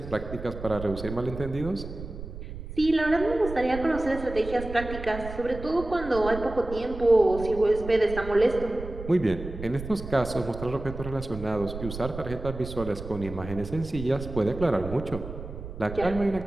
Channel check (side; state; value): right; noise; rumble, 10 dB below the sound